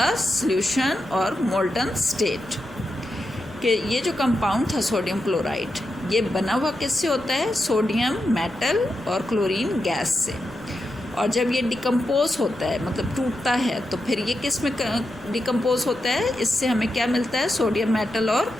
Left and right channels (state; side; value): noise; right; rumble, 21 dB below the sound